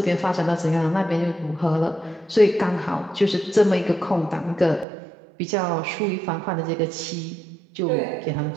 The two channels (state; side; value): drops out; left; at 4.9 s